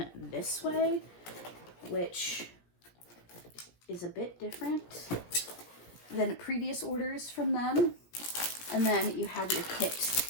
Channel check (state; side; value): late; right; 17 ms